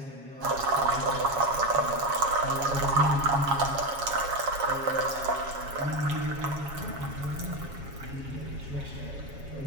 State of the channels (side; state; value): left; late; 7.3 ms